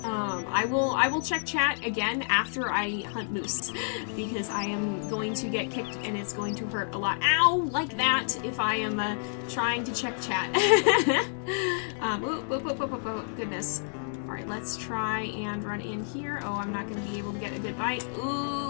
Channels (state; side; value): silent; right; digital silence